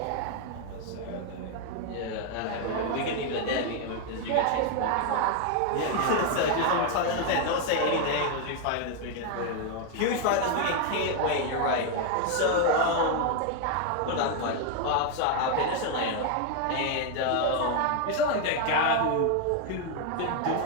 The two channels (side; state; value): both; different; correlation 0.00